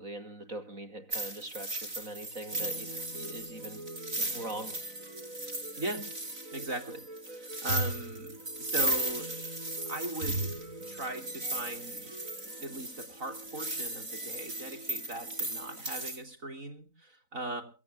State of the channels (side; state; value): left; late; 4.0 ms